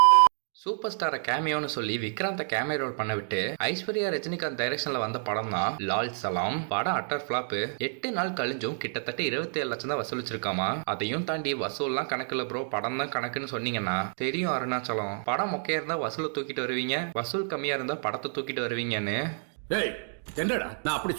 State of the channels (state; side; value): silent; left; digital silence